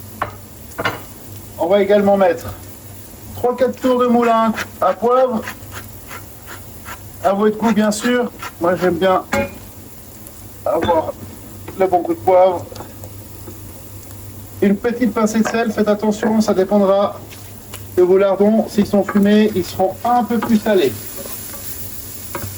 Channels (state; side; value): identical; both; correlation 1.00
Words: On va également mettre 3-4 tours de moulin à poivre. À votre goût, bien sûr. Moi, j'aime bien avoir le bon coup de poivre. Une petite pincée de sel, faites attention, ça dépendra de vos lardons. S'ils sont fumés, ils seront un peu plus salés.